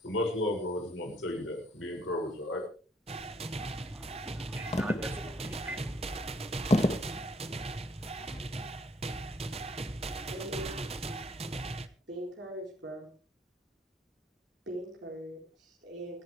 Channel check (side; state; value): both; normal; correlation 0.66